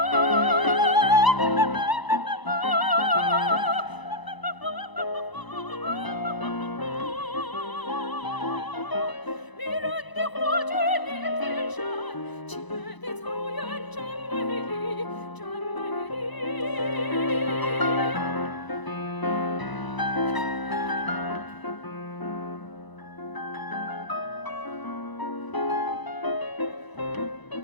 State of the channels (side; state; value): right; late; 1.0 ms